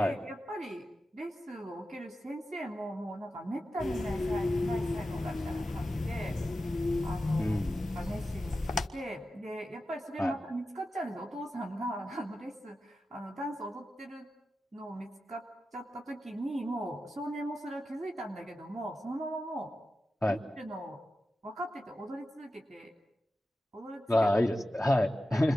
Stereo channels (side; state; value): both; normal; correlation 0.92